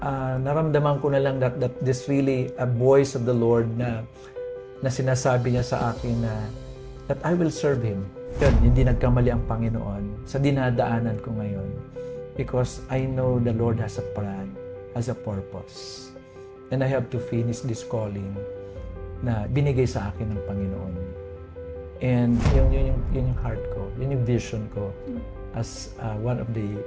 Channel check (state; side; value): identical; both; correlation 1.00